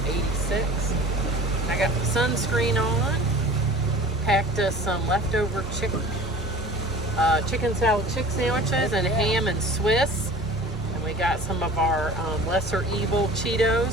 86. I got the sunscreen on. Packed us some leftover chicken salad chick sandwiches and ham and Swiss. And We got some of our lesser evil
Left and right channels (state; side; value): normal; both; correlation 0.42